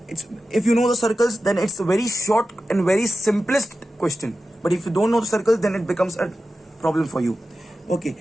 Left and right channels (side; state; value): both; normal; correlation 0.93